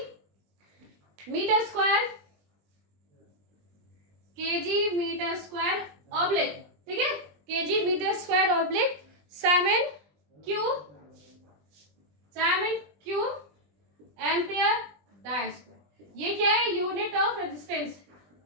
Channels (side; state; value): left; late; 20 ms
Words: metre square oblique, ठीक है, केजी मीटर स्क्वायर ऑब्लिक साइमन क्यूब एम्पियर डाई स्क्वायर। ये क्या है, यूनिट ऑफ रेजिस्टेंस।